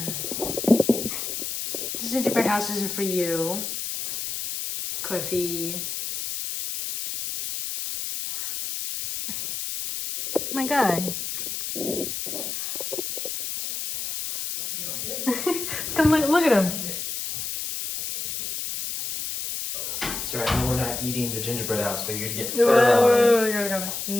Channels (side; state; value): left; noise; hiss, 4 dB below the sound